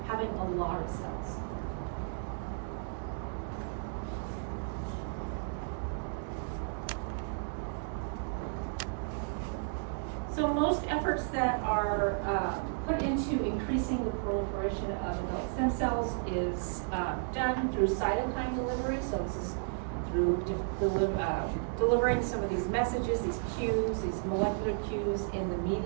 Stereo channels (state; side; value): silent; left; digital silence